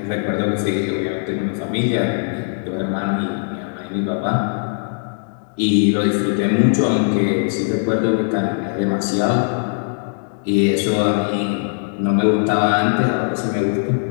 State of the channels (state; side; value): silent; right; digital silence